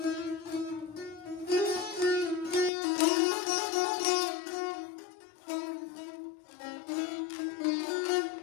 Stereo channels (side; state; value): right; drops out; at 2.7 s